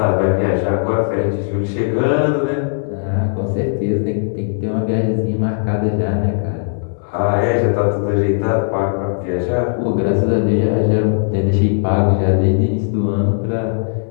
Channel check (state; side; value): silent; right; 63 dB below the other